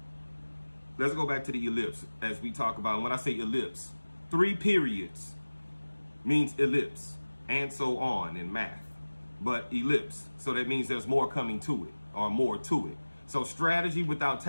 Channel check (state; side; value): inverted; both; correlation -1.00